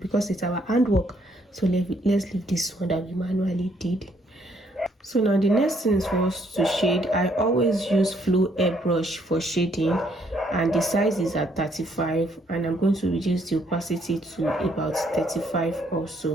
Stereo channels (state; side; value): normal; both; correlation 0.69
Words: it's our handwork. So let's leave this one that we manually did. So now the next thing is for us to shade. I always use flow airbrush for shading, and the size is at 35, and I'm going to reduce the opacity to about 35